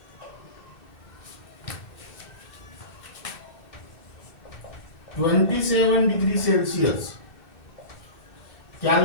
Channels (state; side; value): late; right; 2.6 ms